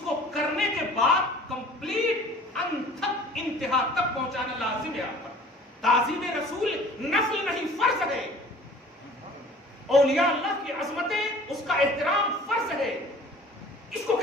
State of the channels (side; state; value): both; normal; correlation 0.48